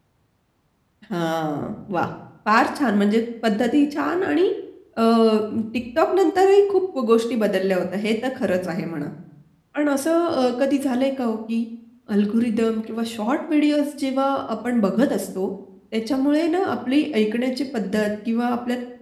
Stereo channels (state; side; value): identical; both; correlation 1.00